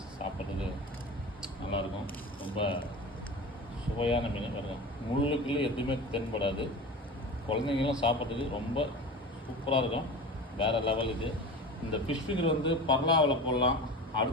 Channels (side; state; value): both; normal; correlation 0.32